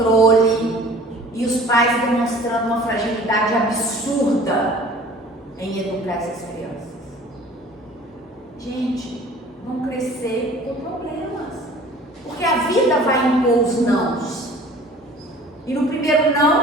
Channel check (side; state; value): both; normal; correlation 0.47